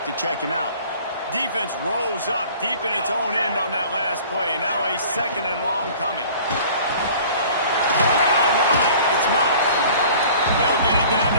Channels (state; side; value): inverted; both; correlation -0.48